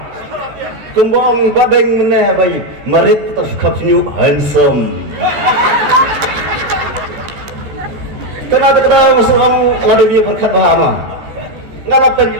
Kembang badeng meneh bayi, merit terus kapnya handsome. Ternyata masuk orang lalu dia berkat bahama. Ngalapan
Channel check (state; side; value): late; left; 13 ms